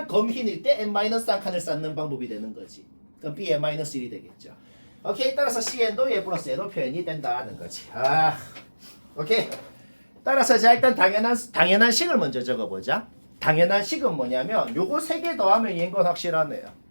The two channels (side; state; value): both; inverted; correlation -1.00